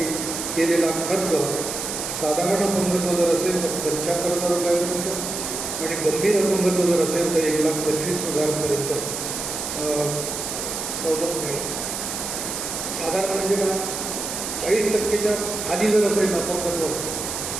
केलेला खर्च साधारण अपंगत्व जर असेल तर 75,000 रुपयापर्यंत आणि गंभीर अपंगत्व जर असेल तर 1,25,000पर्यंत सवलत मिळेल. साधारण म्हणजे का 40% खाली जर असेल अपंगत्व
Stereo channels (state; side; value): noise; right; hiss, 4 dB below the sound